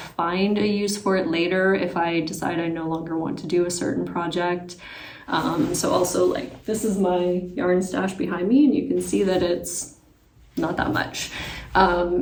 a use for it later if I decide I no longer want to do a certain project. So also, like, this is my yarn stash behind me, and you can see that it's not that much.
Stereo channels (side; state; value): both; identical; correlation 1.00